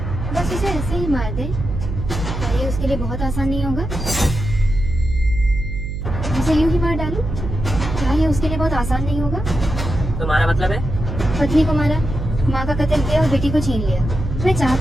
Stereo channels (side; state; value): right; noise; hum, 5 dB below the sound